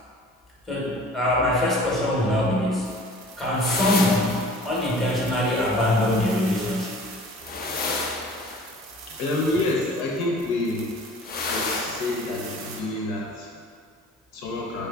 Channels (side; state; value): both; normal; correlation 0.46